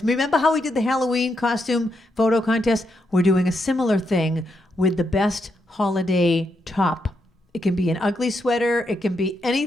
Remember how we did the Halloween costume photo contest? We're doing a similar thing with the best holiday top. It can be an ugly sweater. It can be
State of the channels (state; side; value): normal; both; correlation 0.81